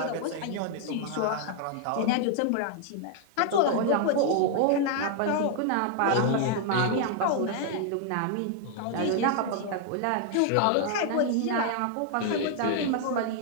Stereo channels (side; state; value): both; different; correlation 0.00